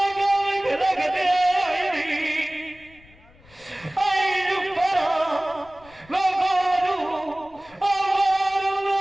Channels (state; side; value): noise; left; rumble, 26 dB below the sound